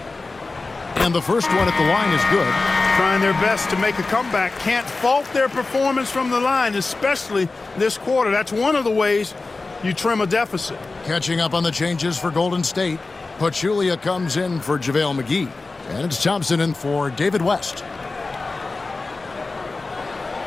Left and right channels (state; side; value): quieter; right; 3.6 dB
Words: And the first one at the line is good. Trying their best to make a comeback. Can't fault their performance from the line, especially this quarter. That's one of the ways you trim a deficit. Catching up on the changes for Golden State. Pachulia comes in for JaVale McGee. And it's Thompson in for David West.